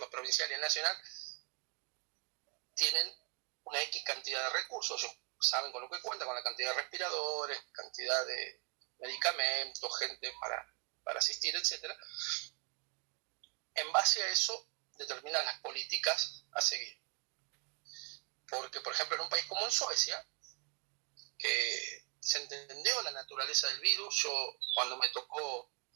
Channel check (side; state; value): left; quieter; 34.4 dB